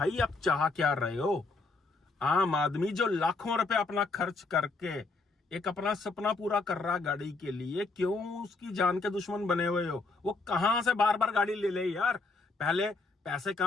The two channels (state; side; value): quieter; right; 3.7 dB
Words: आप चाह क्या रहे हो, आम आदमी जो लाखों रुपए अपना खर्च करके एक अपना सपना पूरा कर रहा गाड़ी के लिए, क्यों उसकी जान के दुश्मन बने हुए हो। वो कहां से बार बार गाड़ी ले ले यार, पहले पैसे